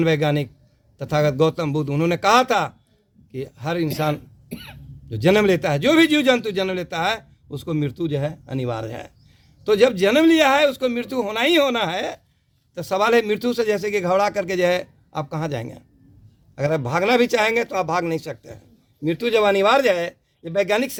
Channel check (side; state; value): both; identical; correlation 1.00